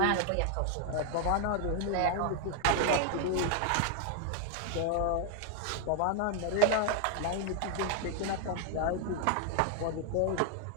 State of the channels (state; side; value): different; both; correlation 0.00